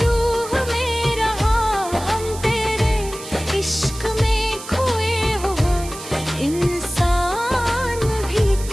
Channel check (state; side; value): noise; right; hiss, 13 dB below the sound